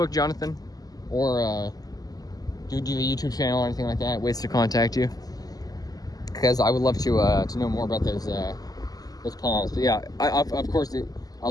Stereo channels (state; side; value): late; right; 0.18 ms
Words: Jonathan? Or do you have a YouTube channel or anything like that? Ways to contact you? Because I would love to know more about those palms. But yeah, of course, I'll